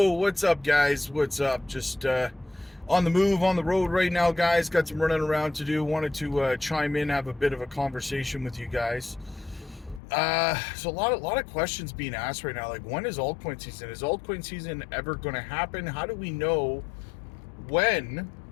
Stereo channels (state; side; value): drops out; right; at 10.0 s